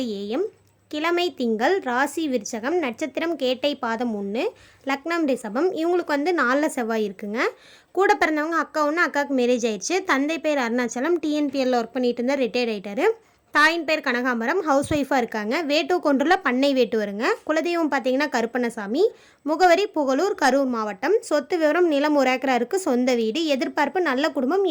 AM. கிழமை திங்கள். ராசி விருச்சகம். நட்சத்திரம் கேட்டை பாதம் 1. லக்னம் ரிஷபம். இவங்களுக்கு வந்து 4 செவ்வாய் இருக்குங்க. கூட பிறந்தவங்க அக்கா ஒன்று, அக்காவுக்கு மேரேஜ் ஆயிடுச்சு. தந்தை பேர் அருணாச்சலம், டிஎன்பிஎல்ல ஒர்க் பண்ணிட்டு இருந்தால் ரிட்டையர்ட் ஆகிட்டாரு. தாயின் பேர் கனகாம்பரம், ஹவுஸ் ஒய்ஃபாக இருக்காங்க. வேட்டு கொன்றுல பண்ணை வேட்டு வருங்க. குலதெய்வம் பார்த்தீங்கன்னா கருப்பண்ணசாமி. முகவரி புகழூர், கரூர் மாவட்டம். சொத்து விவரம் நிலம் 1 ஏக்கரா இருக்குது. சொந்த வீடு. எதிர்பார்ப்பு நல்ல குடும்பம்,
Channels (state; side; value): identical; both; correlation 1.00